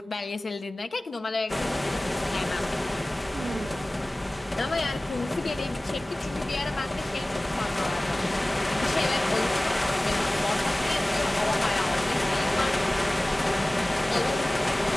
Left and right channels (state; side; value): normal; both; correlation 0.98